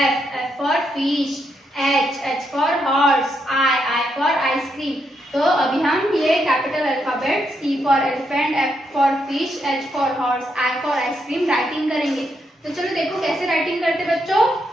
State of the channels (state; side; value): normal; both; correlation 0.79